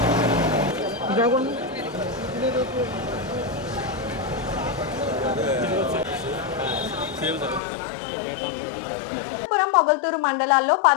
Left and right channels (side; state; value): right; drops out; at 7.6 s